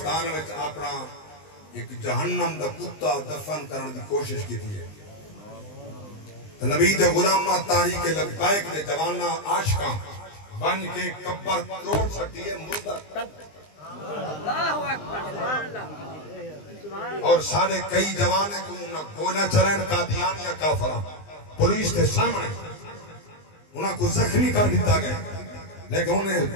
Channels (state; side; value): late; right; 20 ms